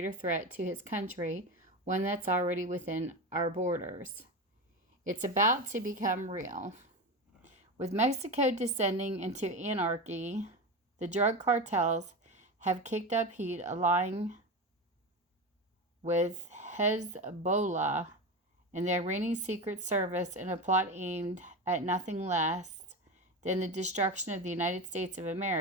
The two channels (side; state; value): both; normal; correlation 0.21